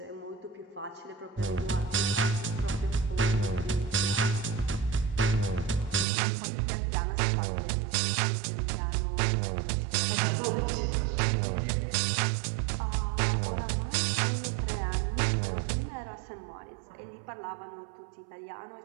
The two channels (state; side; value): drops out; left; at 6.1 s